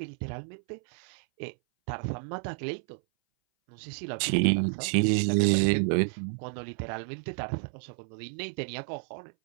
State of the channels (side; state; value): left; silent; 58 dB below the other